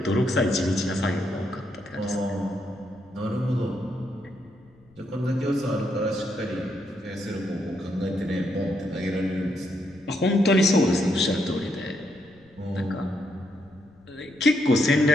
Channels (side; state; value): left; noise; rumble, 28 dB below the sound